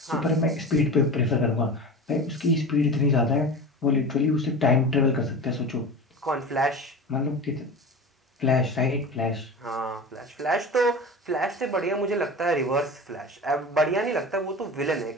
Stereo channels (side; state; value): both; normal; correlation 0.31